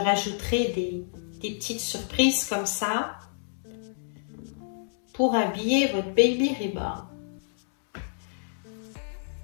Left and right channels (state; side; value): silent; right; digital silence